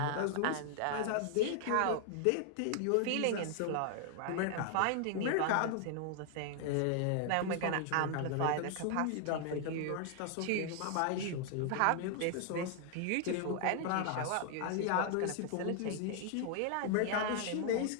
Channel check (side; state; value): both; different; correlation 0.00